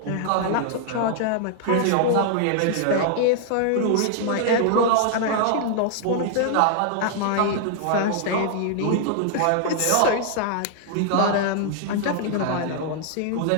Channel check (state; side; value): different; both; correlation -0.01